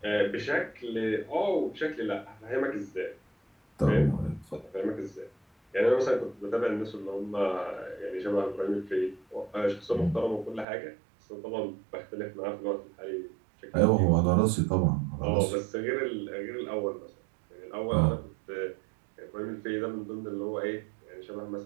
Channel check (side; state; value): left; drops out; at 10.7 s